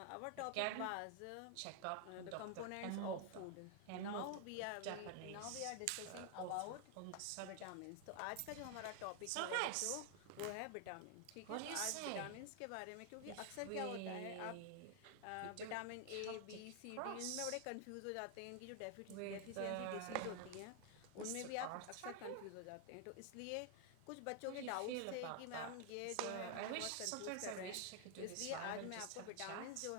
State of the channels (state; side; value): different; both; correlation 0.00